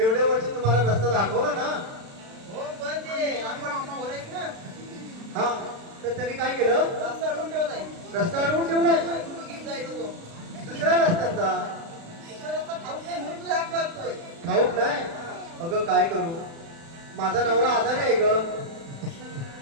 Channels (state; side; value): late; left; 36 ms